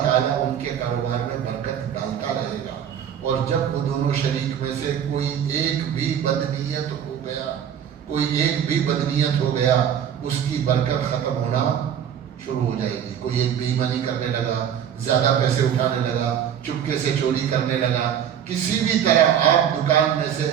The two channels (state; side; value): quieter; left; 9.0 dB